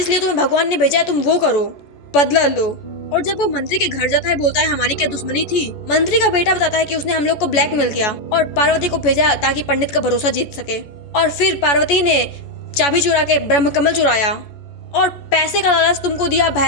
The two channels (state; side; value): late; right; 14 ms